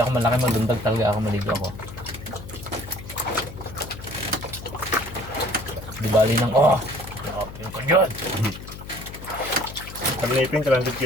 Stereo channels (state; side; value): noise; left; hum, 13 dB below the sound